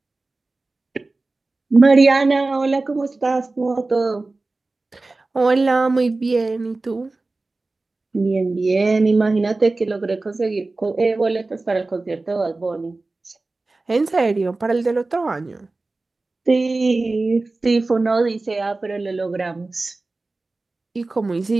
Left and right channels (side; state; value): left; quieter; 3.3 dB